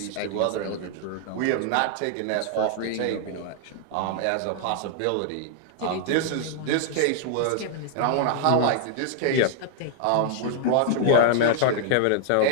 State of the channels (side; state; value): both; different; correlation -0.01